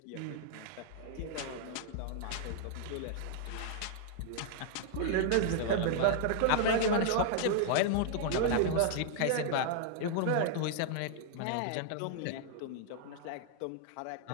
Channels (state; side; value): different; both; correlation -0.01